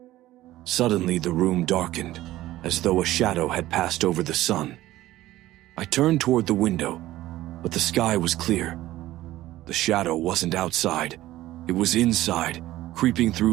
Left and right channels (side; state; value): left; quieter; 15.6 dB